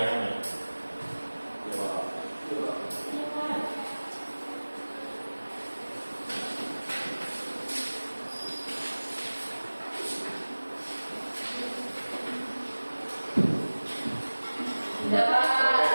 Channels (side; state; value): both; inverted; correlation -1.00